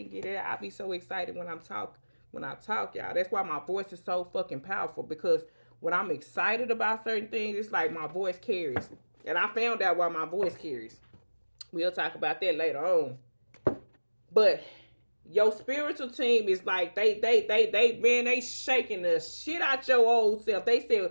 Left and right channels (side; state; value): both; inverted; correlation -1.00